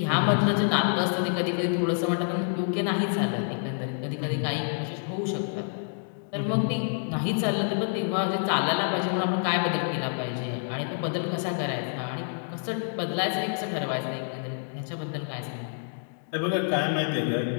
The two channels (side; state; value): right; silent; digital silence